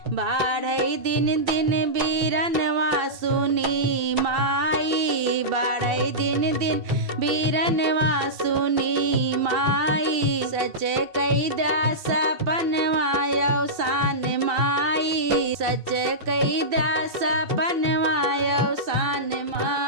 बाढ़ई दिन दिन बीरनवा सुनी माई, बाढ़ई दिन दिन बीरनवा सुनी माई। सच कही द्या सपनवा अवसान माई, सच कही द्या सपनवा अवसान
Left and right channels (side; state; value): left; late; 2.7 ms